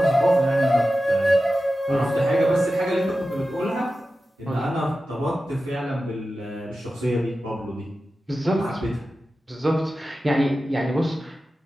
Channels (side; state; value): both; normal; correlation 0.93